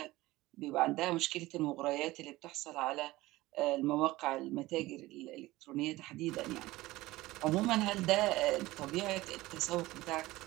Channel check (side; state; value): left; quieter; 18.5 dB